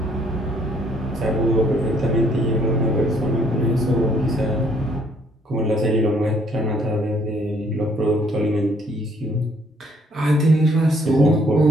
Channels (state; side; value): normal; both; correlation 0.65